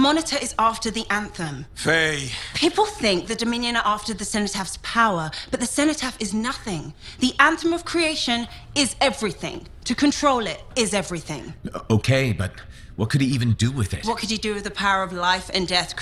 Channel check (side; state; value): both; identical; correlation 1.00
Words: is after the Anthem. Faye. People think the Dominion are after the Cenotaph power, but the Cenotaph is nothing. The Anthem of creation is everything. To control it is everything. Okay, but what could he even do with it? What could he do with the power of life and death,